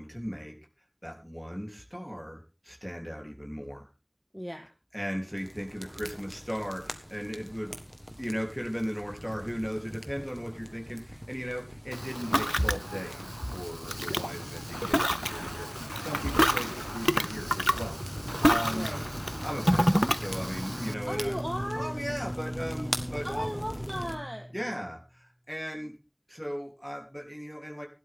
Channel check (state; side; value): identical; both; correlation 1.00